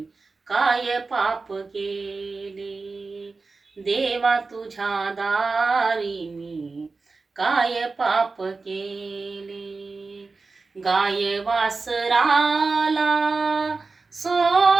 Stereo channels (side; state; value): left; quieter; 4.0 dB